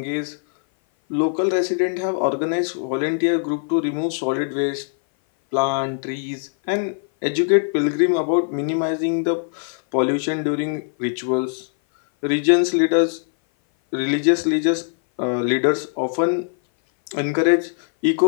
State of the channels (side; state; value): right; silent; 58 dB below the other